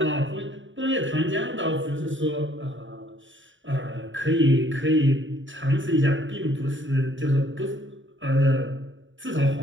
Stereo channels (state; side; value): late; left; 0.55 ms